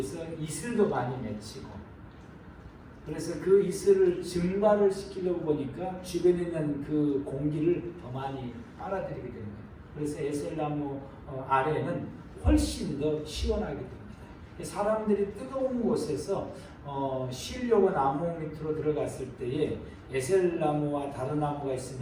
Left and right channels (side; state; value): both; identical; correlation 1.00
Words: 이슬도 많이 맺히고, 그래서 그 이슬을 증발을 시키려고 보니까 주변에 있는 그 공기를 더 많이 빨아들이게 되는 거예요. 그래서 에셀나무 아래는 훨씬 더 시원하게 됩니다. 사람들이 뜨거운 곳에서 쉬려고 나무 밑으로 들어갔을 때에 에셀나무와 다른 나무가